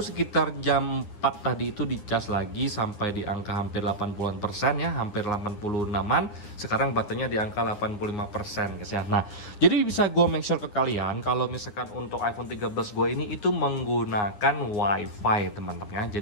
sekitar jam 4 tadi itu dicas lagi sampai di angka hampir 80% ya, hampir 86-an. Sekarang baterainya di angka 85% guys ya. Nah, jadi bisa gue make sure ke kalian kalau misalkan untuk iPhone 13 gue ini itu menggunakan WiFi teman-teman ya.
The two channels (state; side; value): late; right; 9.8 ms